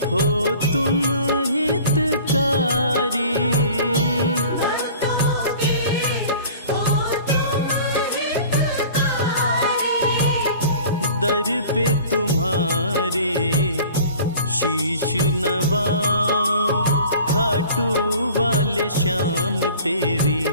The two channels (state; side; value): inverted; both; correlation -0.45